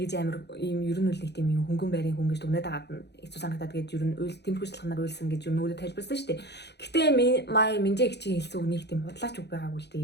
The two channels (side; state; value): right; late; 0.49 ms